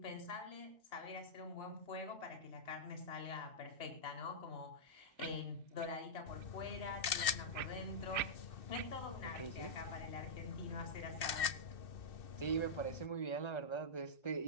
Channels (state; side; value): late; right; 2.6 ms